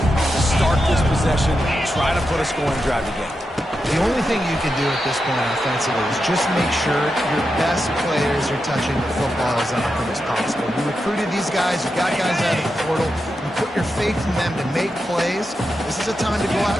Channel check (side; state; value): both; normal; correlation 0.88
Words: to start this possession, try to put a scoring drive again. The only thing you can do at this point offensively is just make sure your best players are touching the football as often as possible. You recruited these guys, you got guys out of the portal, you put your faith in them to make plays. This is a time to go